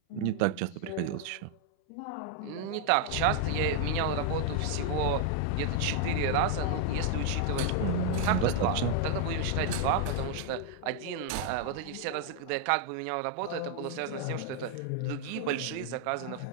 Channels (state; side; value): different; both; correlation 0.00